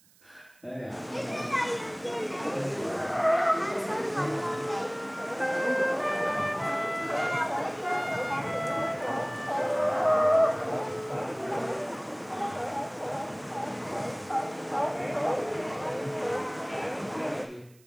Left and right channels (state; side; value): noise; right; hiss, 29 dB below the sound